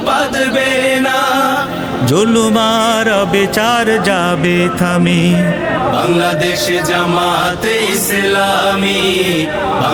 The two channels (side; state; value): both; identical; correlation 1.00